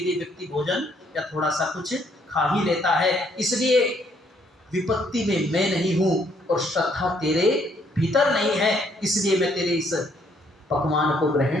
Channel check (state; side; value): normal; both; correlation 0.68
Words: व्यक्ति भोजन या थोड़ा सा कुछ खा ही लेता है। इसलिए विपत्ति में मैं नहीं हूं और श्रद्धा तेरे भीतर नहीं है, इसलिए मैं तेरे इस पकवान को